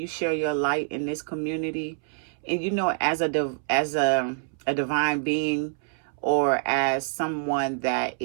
share your light in this community?" And as a divine being, or as someone that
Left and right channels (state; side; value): silent; left; 61 dB below the other